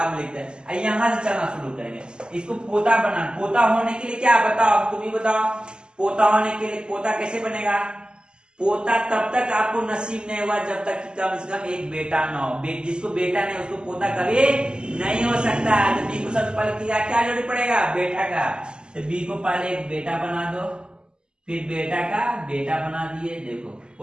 में लिखते हैं। यहाँ से चलना शुरू करेंगे, इसको पोता बना, पोता होने के लिए क्या बताओ, तुम ही बताओ, पोता होने के लिए पोता कैसे बनेगा, पोता तब तक आपको नसीब नहीं हुआ जब तक कि कम से कम एक बेटा ना हो। जिसको बेटा नहीं उसको पोता कभी नहीं हो सकता। तो बी को सबसे पहले क्या जरूरी पड़ेगा, बेटा का। तो बी को पहले एक बेटा बना दो, फिर बेटा का बेटा बना दिए, देखो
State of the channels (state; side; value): late; left; 0.048 ms